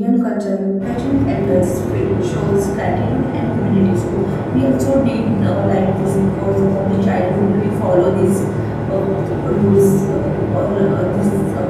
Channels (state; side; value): identical; both; correlation 1.00